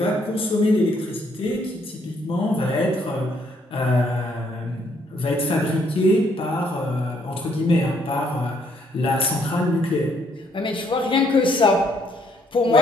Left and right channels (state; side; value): normal; both; correlation 0.69